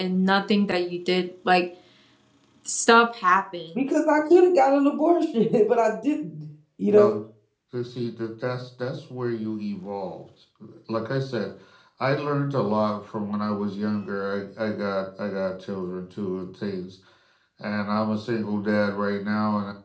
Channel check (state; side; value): identical; both; correlation 1.00